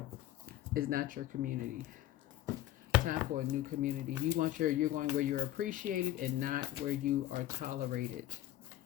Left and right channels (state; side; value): quieter; right; 14.1 dB